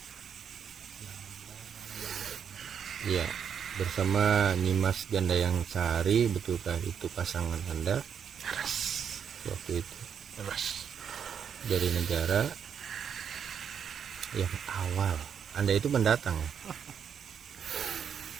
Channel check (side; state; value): left; quieter; 7.7 dB